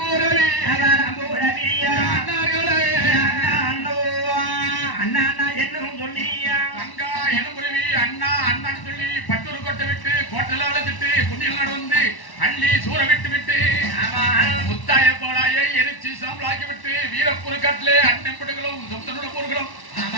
அவரம்போரவி அண்ணார்களே அண்ணா அண்ணா அண்ணா என்னும் சொல்லியா தங்கா எலும்புருவி அண்ணா அண்ணான்னு சொல்லி பட்டூர் கொட்டை விட்டு கோட்டல அழைச்சிட்டு குஞ்சில் நடந்து அள்ளி சூற விட்டு விட்டு முத்தாய போலாய எரிச்சு சாம்பலாக்கி விட்டு வீரப்பூர் கட்டிலே அண்ணன்படுகளும் சொந்தனோட போர்களும்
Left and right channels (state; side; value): late; right; 1.1 ms